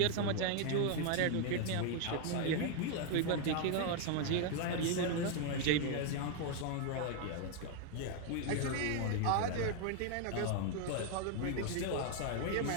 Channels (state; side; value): different; both; correlation 0.00